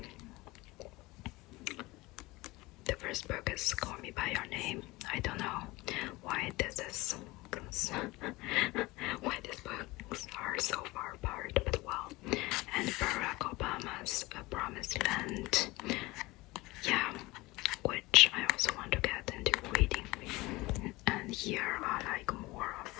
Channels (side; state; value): right; quieter; 21.3 dB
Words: the first book is Call Me By Your Name. I don't know why this is why these books are so far apart, but well. And Barack Obama's A Promised Land, yeah, which I also want to get into reading. And here are like more